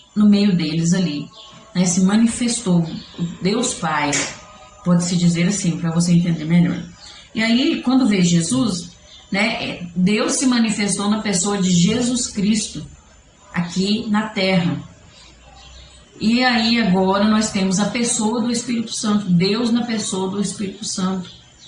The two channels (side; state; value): both; identical; correlation 1.00